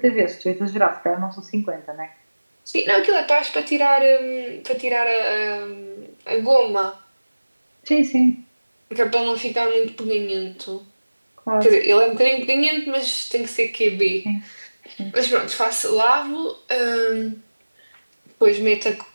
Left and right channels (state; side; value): inverted; both; correlation -1.00